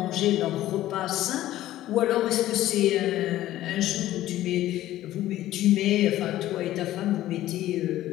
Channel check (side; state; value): right; quieter; 14.3 dB